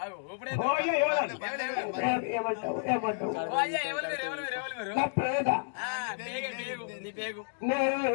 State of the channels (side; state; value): right; silent; digital silence